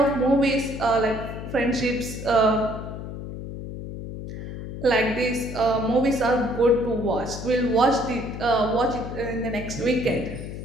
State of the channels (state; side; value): noise; left; hum, 8 dB below the sound